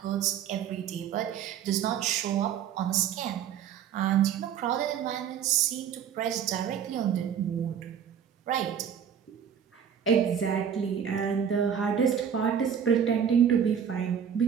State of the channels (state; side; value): quieter; left; 8.3 dB